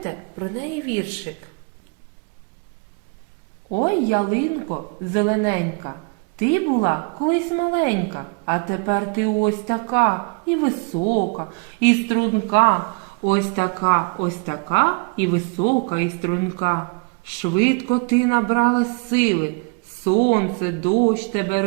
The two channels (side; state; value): left; quieter; 34.4 dB